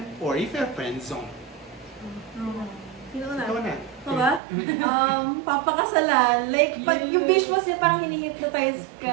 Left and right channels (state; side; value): drops out; left; at 4.4 s